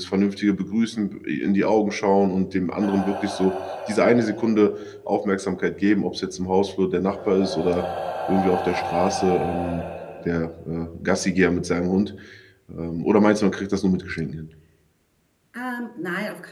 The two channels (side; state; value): both; identical; correlation 1.00